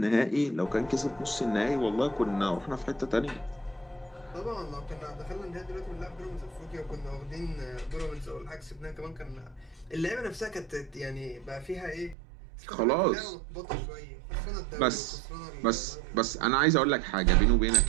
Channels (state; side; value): drops out; left; at 12.2 s